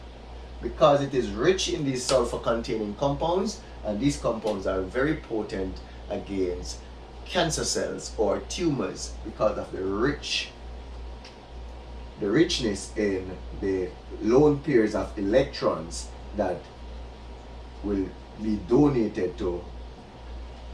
because it is rich in these sulfur containing compounds, and these compounds are very potent against cancer cells or tumors because of the richness in the lone pairs of electrons that will be donated to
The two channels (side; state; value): both; identical; correlation 1.00